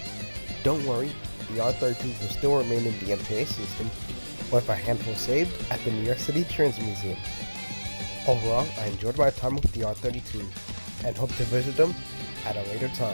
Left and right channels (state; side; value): inverted; both; correlation -1.00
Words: Don't worry, the R32s will still remain in the MTA system, with a handful saved at the New York City Transit Museum. Overall, I enjoyed my time with the R32 and hope to visit them at a later